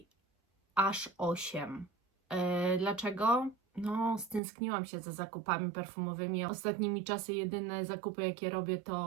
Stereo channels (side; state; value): left; drops out; at 4.4 s